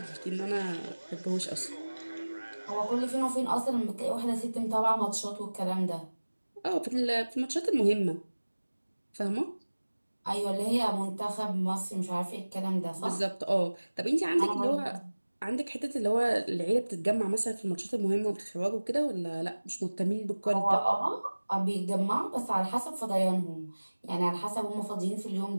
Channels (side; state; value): both; inverted; correlation -1.00